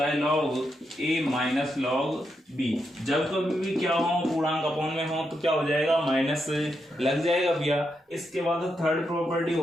है लॉग ए माइनस लॉग बी। जब कभी भी क्या हो पूर्णांक अपॉन में हो तो क्या हो जाएगा, माइनस लग जाएगा भैया। इसके बाद थर्ड प्रॉपर्टी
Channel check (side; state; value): both; normal; correlation 0.83